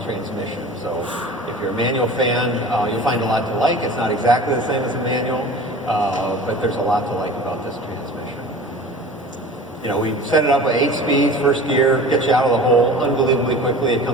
transmission. So if you're a manual fan, you'll find a lot to like. It's not exactly the same as a manual, but there's a lot to like about this transmission. We set it up with 8 speeds, first gear, gets you out of the hole unbelievably quickly. It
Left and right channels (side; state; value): both; normal; correlation 0.39